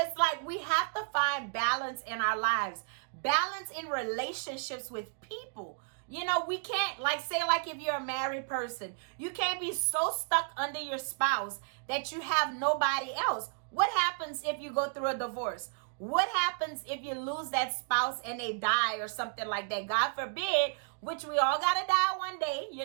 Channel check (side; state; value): left; silent; digital silence